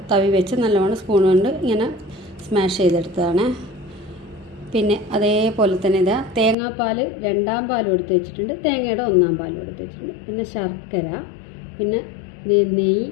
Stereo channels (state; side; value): drops out; right; at 6.6 s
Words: തവി വെച്ച് നല്ലോണം സ്പൂൺ കൊണ്ട് ഇങ്ങനെ സ്മാഷ് ചെയ്തെടുത്തതാണ്. പിന്നെ അതേപോലെ തന്നെ ഇതാ തേങ്ങാപ്പാൽ 2 പാലും എടുത്ത് വെച്ചിട്ടുണ്ട്, തേങ്ങയുടെ 1 പാലും എടുത്ത് വെച്ചിട്ടുണ്ട്. പിന്നെ ശർക്കര, പിന്നെ നെയ്യ്,